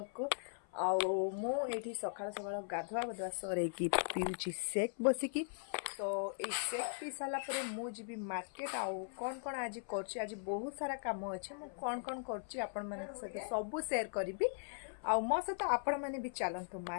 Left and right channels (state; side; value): silent; right; 52 dB below the other